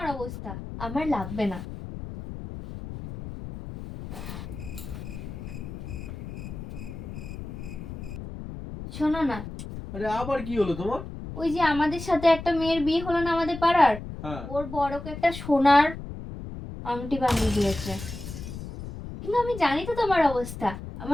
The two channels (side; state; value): left; noise; rumble, 10 dB below the sound